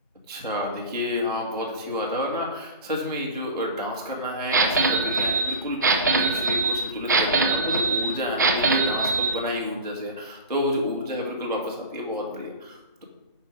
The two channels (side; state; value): both; inverted; correlation -0.30